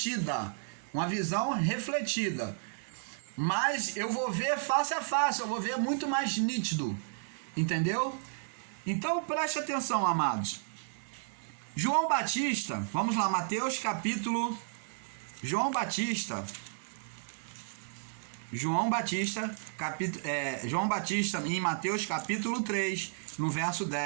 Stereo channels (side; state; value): left; silent; digital silence